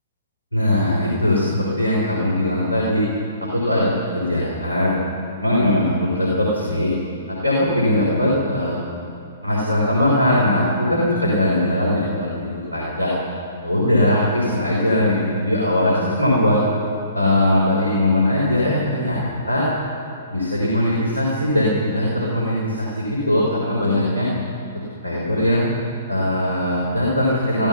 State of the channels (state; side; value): inverted; both; correlation -0.62